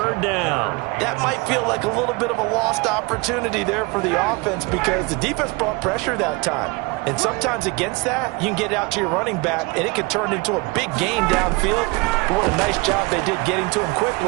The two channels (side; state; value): left; quieter; 26.4 dB